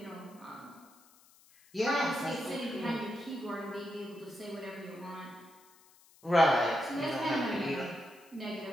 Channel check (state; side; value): noise; left; hiss, 27 dB below the sound